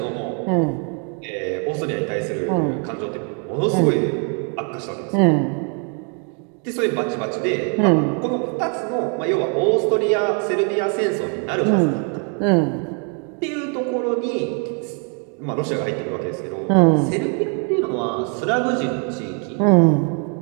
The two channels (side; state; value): left; quieter; 39.7 dB